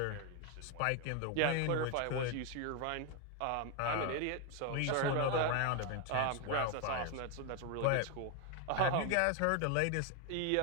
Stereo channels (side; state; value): both; different; correlation 0.01